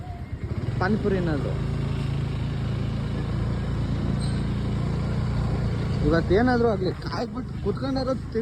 ಪಾನಿಪುರಿ ಏನಾದ್ರು. ಇವತ್ತೇನಾದ್ರು ಆಗಲಿ ಕಾಯ್ಬಿಟ್ಟು ಕುತ್ಕೊಂಡಾರ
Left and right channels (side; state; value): both; identical; correlation 1.00